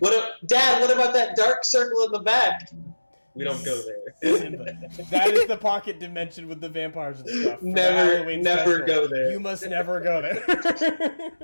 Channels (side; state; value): both; inverted; correlation -1.00